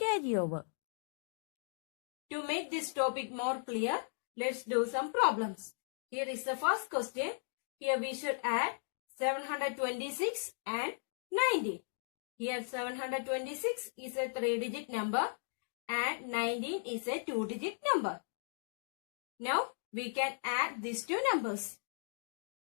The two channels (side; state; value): right; silent; digital silence